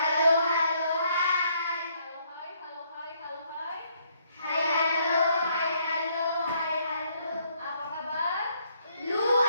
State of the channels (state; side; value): inverted; both; correlation -0.70